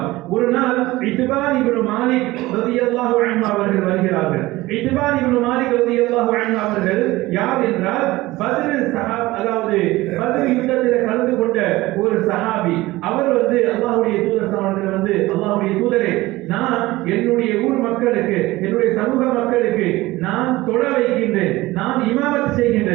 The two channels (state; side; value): quieter; left; 18.8 dB